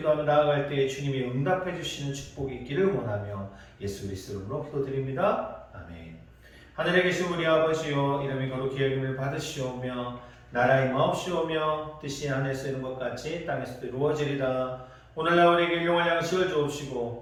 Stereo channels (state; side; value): identical; both; correlation 1.00